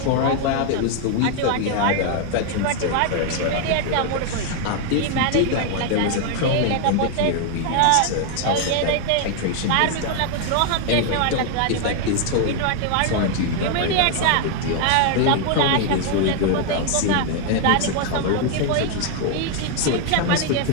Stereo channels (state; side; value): different; both; correlation 0.00